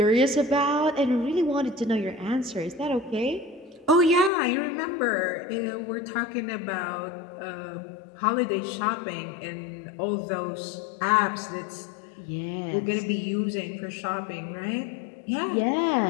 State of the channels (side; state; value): right; drops out; at 4.3 s